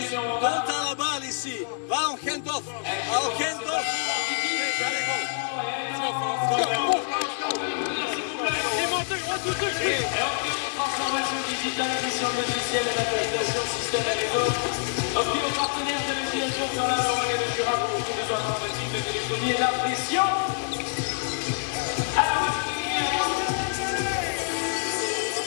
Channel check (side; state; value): right; silent; digital silence